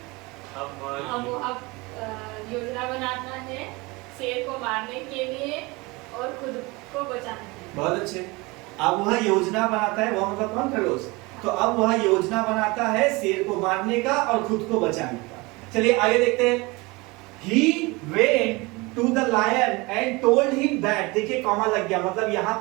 अब योजना बनाना है शेर को मारने के लिए और खुद को बचाने के लिए। बहुत अच्छे। अब वह योजना बनाता है, वह मतलब कौन? खरगोश। तो अब वह योजना बनाता है शेर को मारने का और खुद को बचाने का। चलिए आगे देखते हैं। He went to the lion and told him that, देखिए कॉमा लग गया, मतलब यहाँ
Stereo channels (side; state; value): left; quieter; 24.5 dB